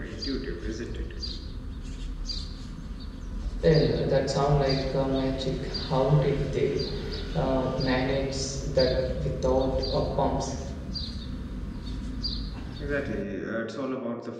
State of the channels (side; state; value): both; identical; correlation 1.00